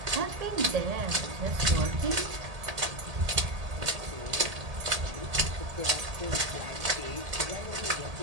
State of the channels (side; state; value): left; late; 1.8 ms